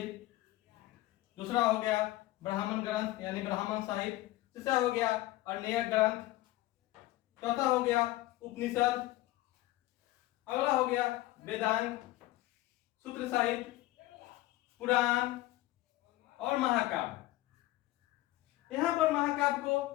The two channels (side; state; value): right; quieter; 17.0 dB